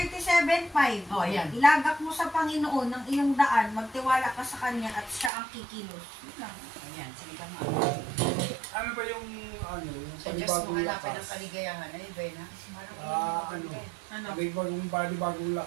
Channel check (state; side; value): drops out; left; at 5.3 s